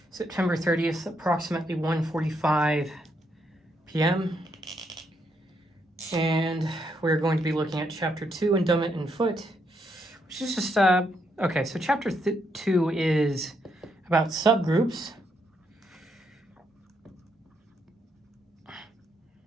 September 30th, approximately 1:45 p.m. And we're going to be looking at Chapter 2, Endowment and Foot, which is just, okay, so Chapter 2 is about subgroups.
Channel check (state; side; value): normal; both; correlation 0.77